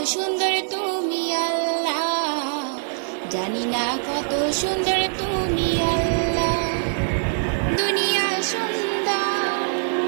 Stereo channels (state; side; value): silent; left; 63 dB below the other